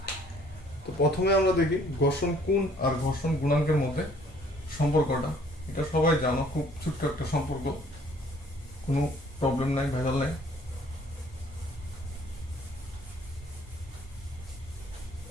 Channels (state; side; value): normal; both; correlation 0.58